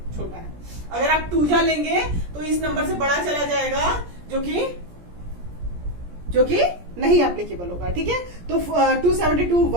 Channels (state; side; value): late; left; 17 ms